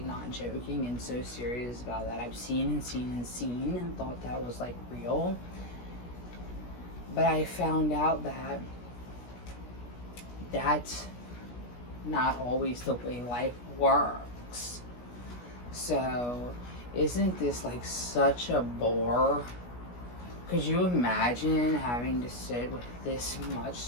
not joking and so serious about that. I've seen and thought that was like real. But I found out that that's not always the way life works. So, isn't this like such a bore? Could you imagine having to sit with this much?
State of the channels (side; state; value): right; late; 17 ms